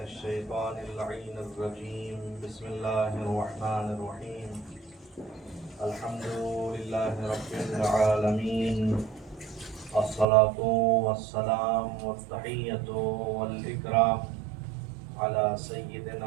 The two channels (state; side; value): drops out; left; at 10.2 s